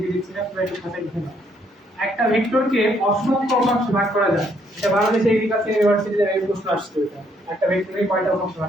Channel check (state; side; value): normal; both; correlation 0.70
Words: দিচ্ছি না, তোমরা একটু খাতায় লিখে নাও। একটা ভেক্টরকে অসংখ্য উপাংশে ভাগ করা যায়, এটা বাংলাদেশ এগ্রিকালচার ইউনিভার্সিটিতে এই প্রশ্ন আসছে, এটা একটা ভেক্টরকে কয়টা উপাংশে